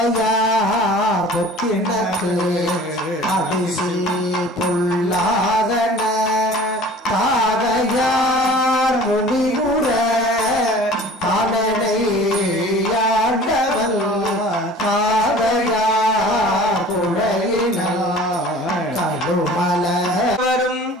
பொக்கினக்கு அடிசில் பொல்லாதன தாதையார் முடிவுற தானனை ஆண்டவன் தாதையார் குழையினார் கடுமல வரும்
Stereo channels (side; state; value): both; normal; correlation 0.45